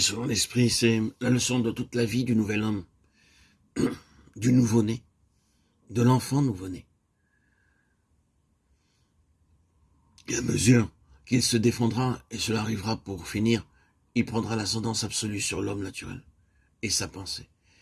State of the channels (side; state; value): both; identical; correlation 1.00